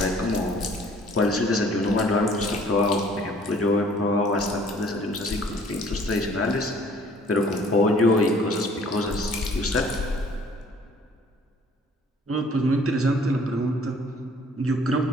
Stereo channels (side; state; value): both; normal; correlation 0.56